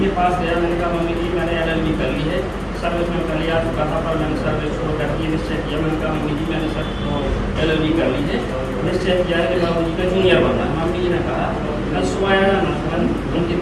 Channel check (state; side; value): identical; both; correlation 1.00